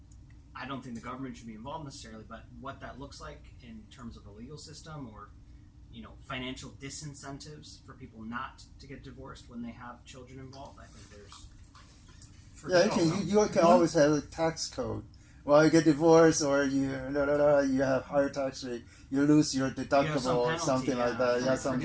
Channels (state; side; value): identical; both; correlation 1.00